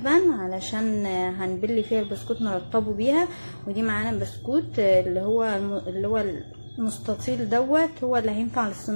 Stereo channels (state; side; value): inverted; both; correlation -1.00